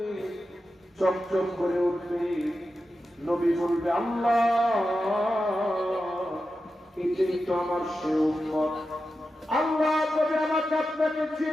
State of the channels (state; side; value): normal; both; correlation 0.91